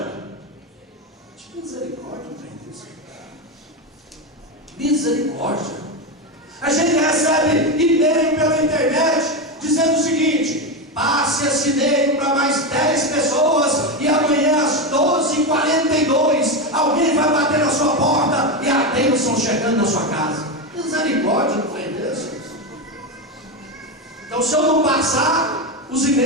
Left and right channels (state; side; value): normal; both; correlation 0.13